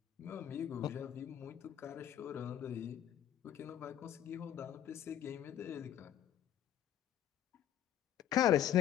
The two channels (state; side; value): quieter; right; 10.7 dB